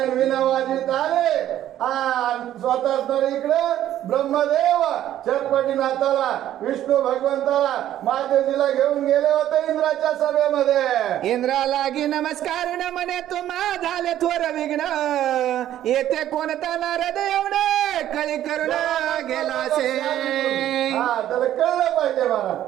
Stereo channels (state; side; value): quieter; left; 12.2 dB